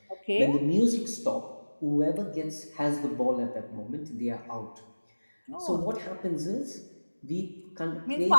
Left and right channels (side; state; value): both; inverted; correlation -1.00